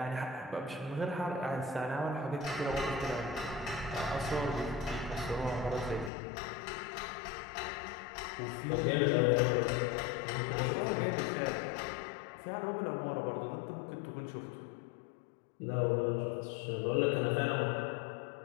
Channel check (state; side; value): drops out; right; at 6.1 s